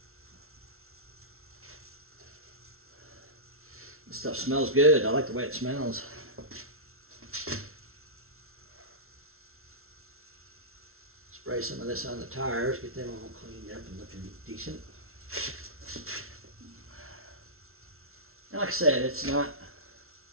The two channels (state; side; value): late; left; 0.62 ms